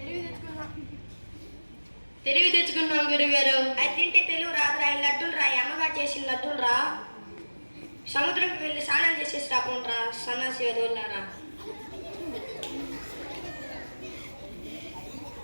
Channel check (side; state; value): both; inverted; correlation -1.00